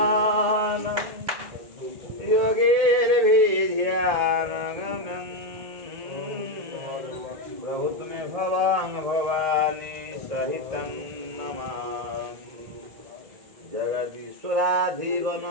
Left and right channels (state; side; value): late; left; 1.8 ms